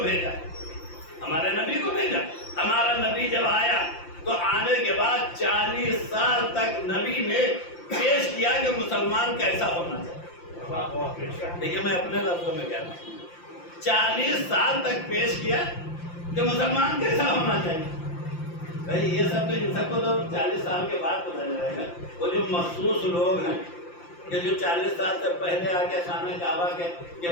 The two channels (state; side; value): late; right; 5.8 ms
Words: بھیجا۔ ہمارا نبی جب آیا تو آنے کے بعد 40 سال تک نبی نے پیش کیا کہ مسلمان کیسا ہونا چاہیے۔ دیکھیے میں اپنے لفظوں میں کہتا ہوں، 40 سال تک پیش کیا کہ مسلمان کیسا ہونا چاہیے۔ بھائی یہ سب تو ان سب کو تو 40 سال کے بعد پتہ چلے گا۔ وہ جو مخصوص لوگ ہیں کہ جو 40 سال سے پہلے آ کے خانہ کعبہ کے